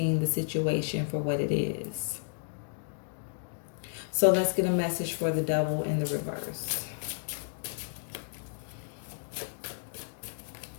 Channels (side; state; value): right; silent; digital silence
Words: the situation for what it is. So let's get a message for the Devil in the reverse.